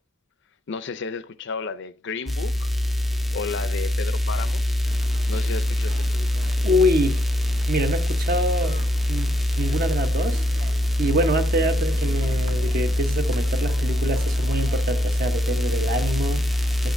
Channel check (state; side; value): normal; both; correlation 0.77